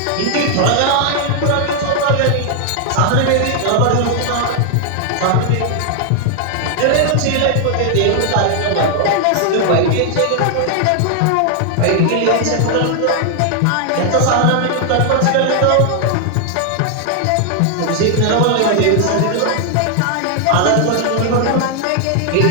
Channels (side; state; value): both; different; correlation 0.00